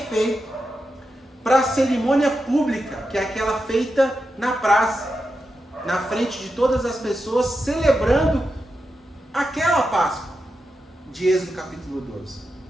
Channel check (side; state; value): both; normal; correlation 0.88